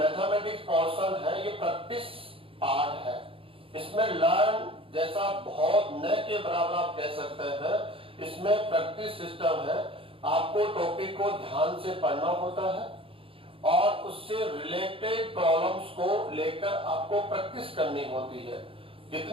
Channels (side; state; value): left; late; 0.26 ms